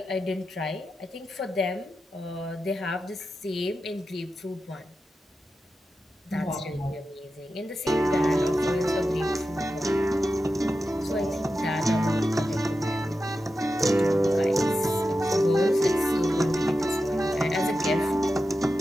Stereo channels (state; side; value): normal; both; correlation 0.91